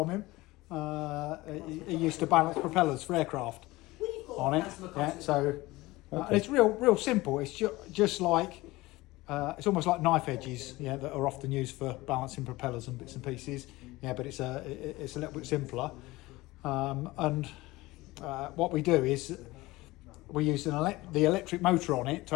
him. He used to balance propellers for aircraft on it. Yeah, so it's real simple. It's just like it's almost like knife edges, that are often used for balancing propellers and bits and pieces. Yeah, but it's a little bit simpler. And what we do is we use the electric motor on it to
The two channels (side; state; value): right; quieter; 19.9 dB